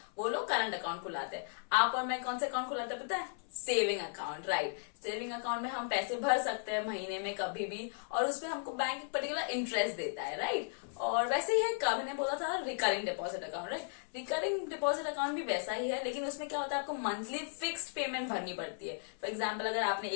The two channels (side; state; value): right; silent; 54 dB below the other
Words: वो लोग करंट अकाउंट खुलाते हैं. आप और मैं कौन से अकाउंट खुलाते हैं पता है? Saving account, right? Saving account में हम पैसे भर सकते हैं महीने में कभी भी, और उसमें हमको बैंक एक पर्टिकुलर इंटरेस्ट देता है, राइट? और वैसे ही है, कभी ने बोला था recurring deposit account, right? Recurring deposit account भी वैसा ही है, लेकिन उसमें क्या होता है, आपको मंथली फिक्स्ड पेमेंट भरनी पड़ती है. फॉर एग्जाम्पल, अगर आपने